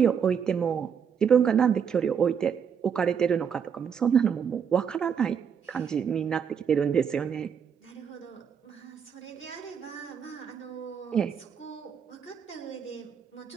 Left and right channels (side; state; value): left; quieter; 7.3 dB